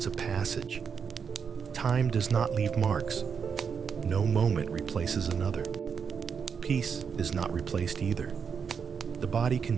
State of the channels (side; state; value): left; quieter; 6.5 dB